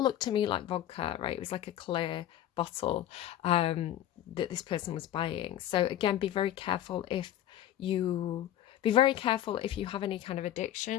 to me like vodka, right? It was like a clear bottle that this person was buying. So again, be very careful if you have any kind of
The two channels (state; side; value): quieter; right; 12.0 dB